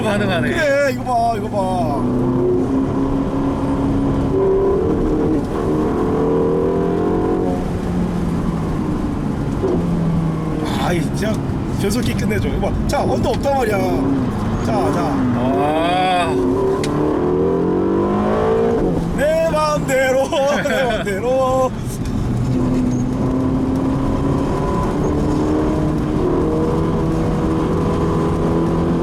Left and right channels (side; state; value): both; identical; correlation 1.00